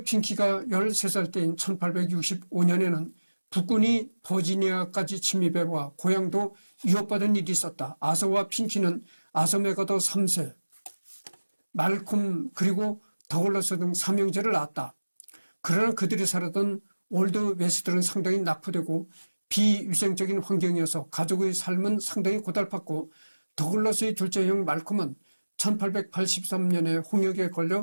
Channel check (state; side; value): inverted; both; correlation -1.00